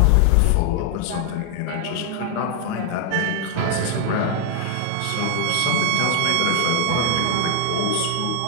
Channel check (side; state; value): both; different; correlation 0.00